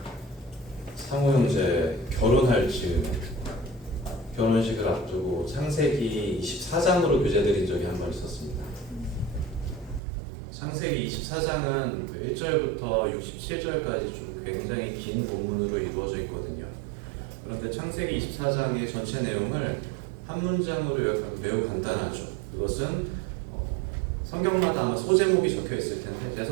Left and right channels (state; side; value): drops out; left; at 10.0 s